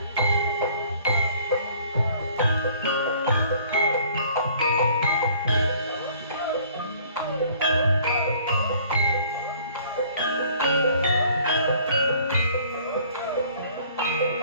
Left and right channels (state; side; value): inverted; both; correlation -0.56